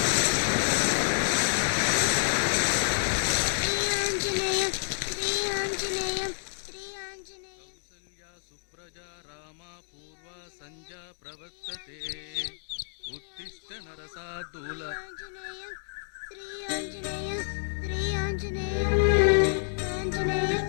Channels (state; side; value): silent; right; digital silence